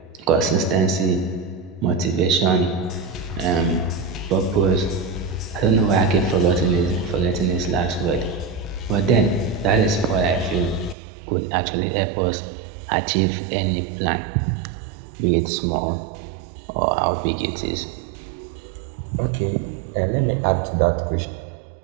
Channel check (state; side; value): drops out; left; at 11.0 s